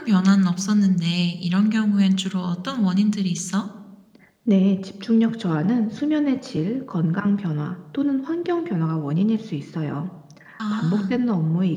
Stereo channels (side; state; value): both; identical; correlation 1.00